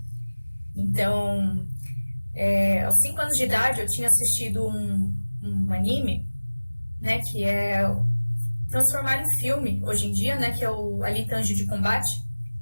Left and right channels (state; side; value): inverted; both; correlation -1.00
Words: Então, aos 5 anos de idade eu tinha assistido um anime, né, que é transformaram em filme hoje em dia, né, que é o Alita Anjo de Combate.